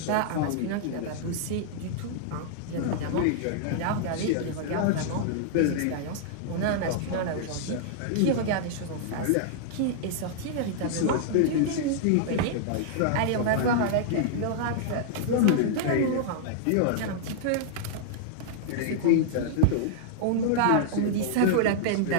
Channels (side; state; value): both; different; correlation -0.01